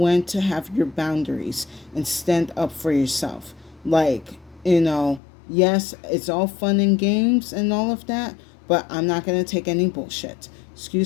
to have your boundaries and stand up for yourself. Like, yes, it's all fun and games and all of that, but I'm not going to take any bullshit.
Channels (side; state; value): right; drops out; at 5.2 s